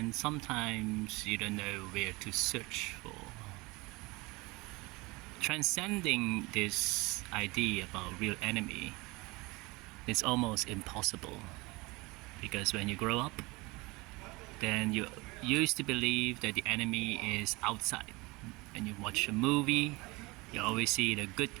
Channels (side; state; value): left; quieter; 23.9 dB